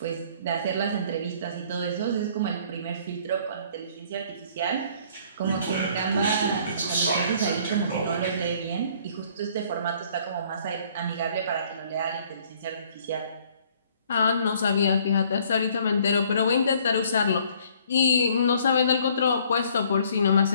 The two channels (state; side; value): inverted; both; correlation -0.59